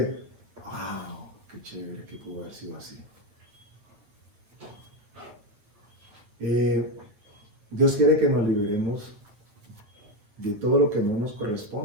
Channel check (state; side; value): late; left; 9.2 ms